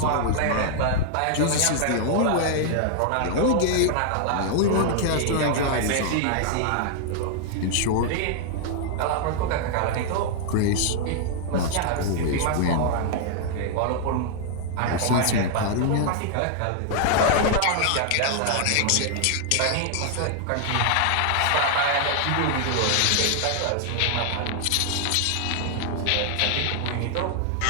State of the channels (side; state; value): both; different; correlation -0.01